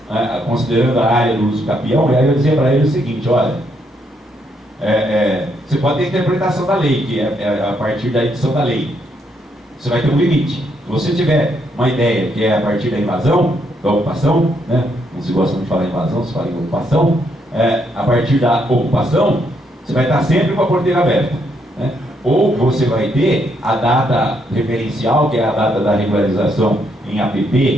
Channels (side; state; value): both; normal; correlation 0.75